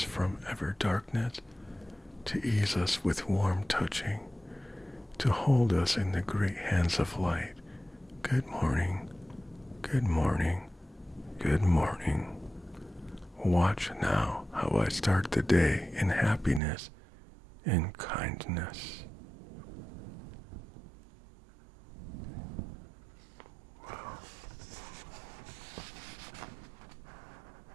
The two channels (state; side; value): drops out; left; at 16.6 s